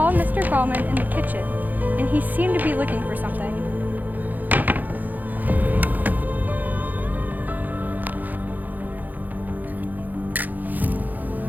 Mr. Gallman in the kitchen, and he seemed to be looking for something.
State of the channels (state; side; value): late; left; 0.083 ms